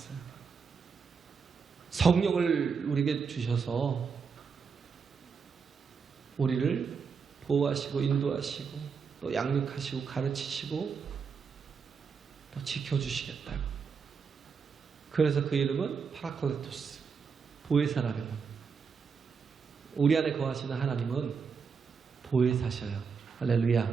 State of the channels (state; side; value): quieter; left; 5.7 dB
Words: 성령을 우리에게 주셔서 우리를 보호하시고 인도하시고 또 양육하시고 가르치시고 또 지켜주시겠다고. 그래서 그 이름은 파라클레토스, 보혜사라는 겁니다. 우리 안에 거하시는 하나님은 보혜사셔요.